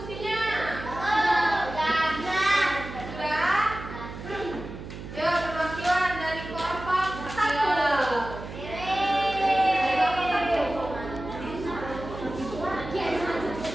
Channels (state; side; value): noise; right; hum, 11 dB below the sound